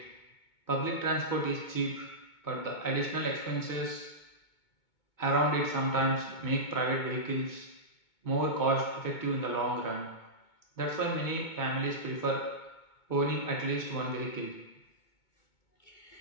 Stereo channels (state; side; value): late; right; 2.2 ms